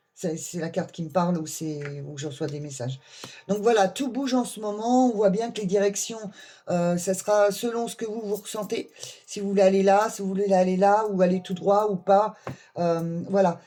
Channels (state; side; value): identical; both; correlation 1.00